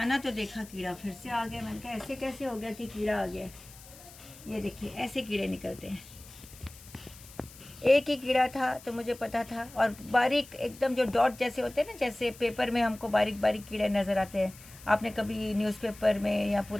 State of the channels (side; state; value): left; noise; hiss, 19 dB below the sound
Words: तो देखा कीड़ा फिर से आ गया। मैंने कहा ऐसे कैसे हो गया कि कीड़ा आ गया। ये देखिए ऐसे कीड़े निकलते हैं। एक ही कीड़ा था तो मुझे पता था, और बारीक एकदम जो डॉट जैसे होते हैं ना, जैसे पेपर में हमको बारीक बारीक कीड़े नज़र आते हैं। आपने कभी न्यूज़पेपर में या